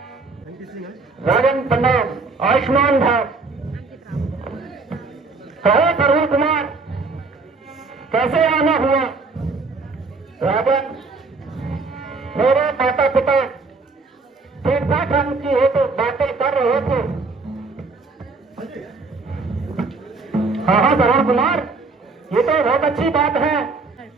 राजन प्रणाम। आयुष्मान भव। कहो तरुण कुमार, कैसे आना हुआ? राजन, मेरे माता पिता ठीक ठाक ढंग की है तो बातें कर रहे थे। हाँ हाँ तरुण कुमार, ये तो बहुत अच्छी बात है।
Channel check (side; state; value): left; quieter; 4.0 dB